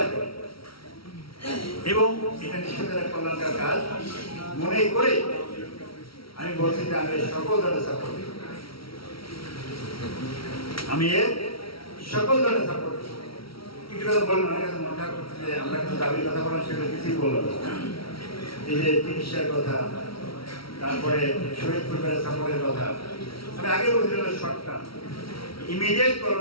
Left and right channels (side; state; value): right; late; 0.75 ms